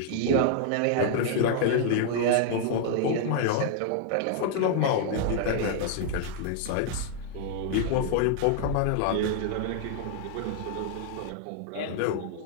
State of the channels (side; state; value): both; different; correlation 0.00